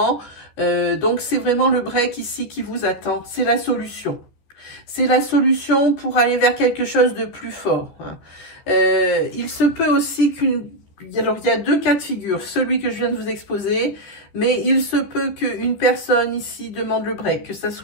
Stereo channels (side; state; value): right; late; 14 ms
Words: Donc c'est vraiment le break ici qui vous attend, c'est la solution. C'est la solution pour aller vers quelque chose de plus fort. Il se peut aussi qu'une... Alors, il y a deux cas de figure, celui que je viens de vous exposer, mais il se peut qu'une personne ici demande le break, que ce